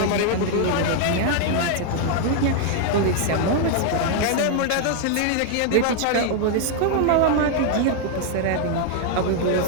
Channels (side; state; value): both; different; correlation 0.00